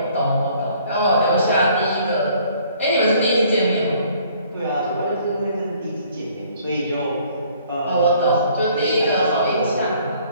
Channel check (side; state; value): both; inverted; correlation -0.58